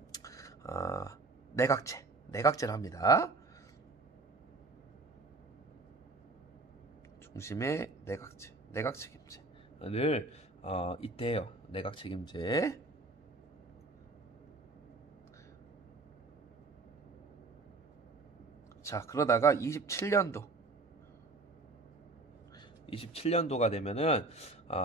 내각제를 합니다. 중심의 내각 책임제를 이때 해요. 내각 책임제. 자, 그러다가 27년도가 되면은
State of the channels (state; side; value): quieter; left; 3.4 dB